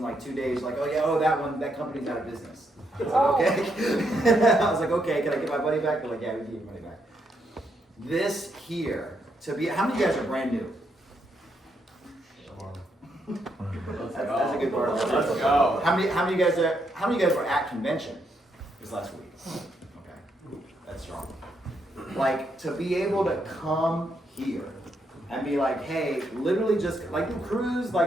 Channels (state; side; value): normal; both; correlation 0.78